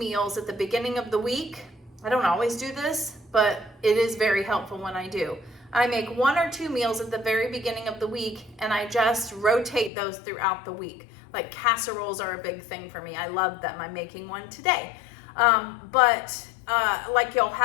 at the beginning of the week. I don't always do this, but it is very helpful when I do. I make 1 or 2 meals at the very beginning of the week, and I just rotate those throughout the week. Like casseroles are a big thing for me. I love them. I'm making one today. Like you'll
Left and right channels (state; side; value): drops out; right; at 9.9 s